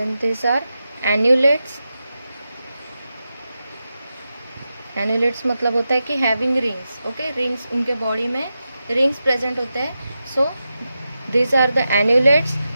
this are annulates. Annulates मतलब होता है कि हैविंग रिंग्स. ओके, रिंग्स उनके बॉडी में रिंग्स प्रेजेंट होते हैं. So this are the annulates.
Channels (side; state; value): both; inverted; correlation -0.90